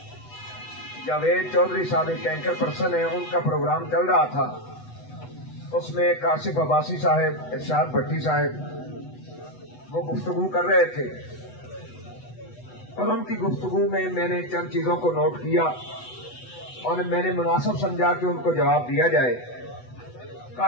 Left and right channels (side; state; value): right; late; 8.1 ms